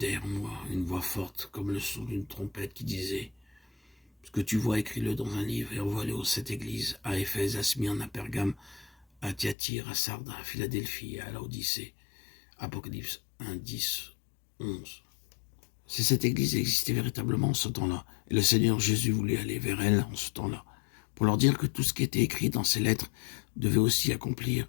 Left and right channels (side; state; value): right; drops out; at 9.6 s